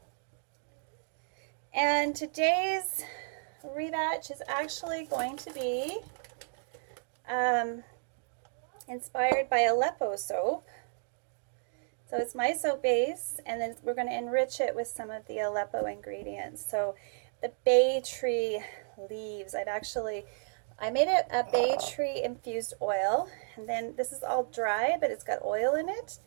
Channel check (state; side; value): silent; left; digital silence